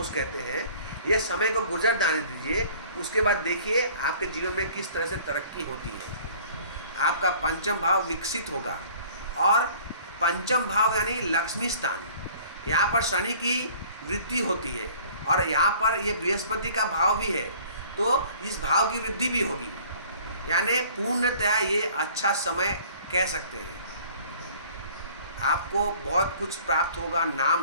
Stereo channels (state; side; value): inverted; both; correlation -0.51